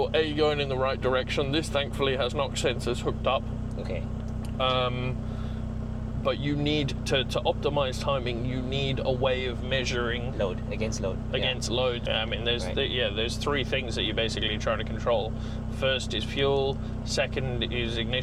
going in the right direction. This thankfully has knock sensors hooked up. Okay. But you need to optimize timing. You need a way of measuring load against load. I mean, there's three things that you're basically trying to control. First is fuel. Second is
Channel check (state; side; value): identical; both; correlation 1.00